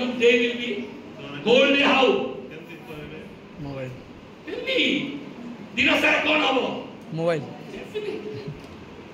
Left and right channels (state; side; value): identical; both; correlation 1.00